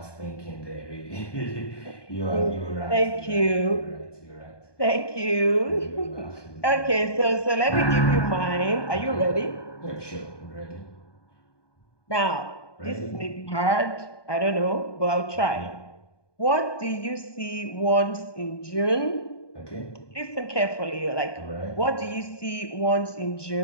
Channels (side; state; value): right; late; 1.2 ms